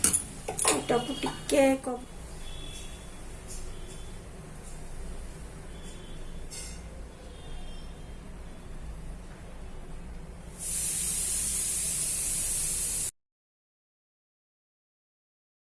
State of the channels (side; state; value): both; identical; correlation 1.00